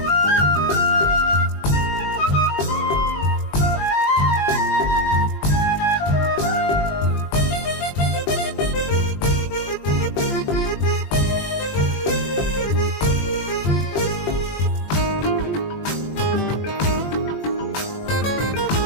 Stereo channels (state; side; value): late; right; 20 ms